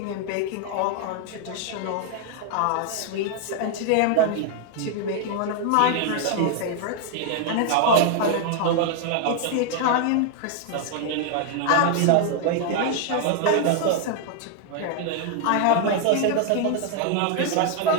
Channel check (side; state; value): both; different; correlation 0.00